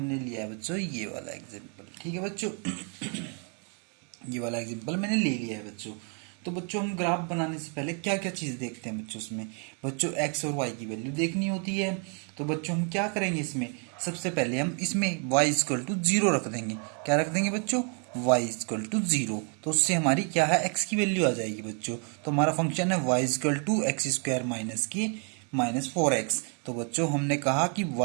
लिया है बच्चों ये वाला एग्जाम्पल। ठीक है बच्चों, ये वाला एग्जाम्पल मैंने ले लिया है बच्चों। तो बच्चों हम ग्राफ बनाने से पहले क्या क्या चीज देखते हैं बच्चों उसमें। बच्चों एक्स और वाई की वैल्यू देखनी होती है। तो बच्चों हम क्या करेंगे इसमें, सबसे पहले हम इसमें y इक्वल टू जीरो रख देंगे। क्या रख देंगे बच्चों, y इक्वल टू जीरो। तो उससे हमारी क्या है, x की वैल्यू आ जाएगी बच्चों। तो हमारा फंक्शन है y equal to X square minus की माइनस 4x। तो बच्चों हमने कहा कि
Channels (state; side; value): quieter; left; 39.6 dB